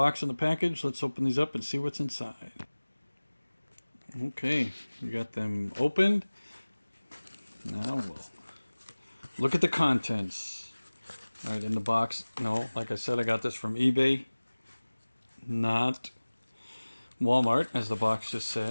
and the package. Let's open these up and see what's inside. Okay, we got them opened. Now we'll look at the contents. Alright, in the box, no, like I said, I got this from eBay, not Walmart, as the box just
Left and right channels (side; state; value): both; inverted; correlation -1.00